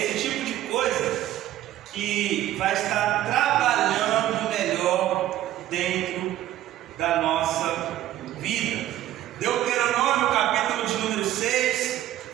tipo de coisa que vai estar trabalhando melhor dentro da nossa vida. Deuteronômio, capítulo de número 6,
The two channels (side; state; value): left; quieter; 13.5 dB